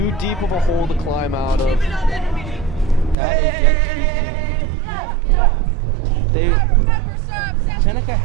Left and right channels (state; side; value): drops out; left; at 3.2 s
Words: deep of a hole to climb out of? Seneca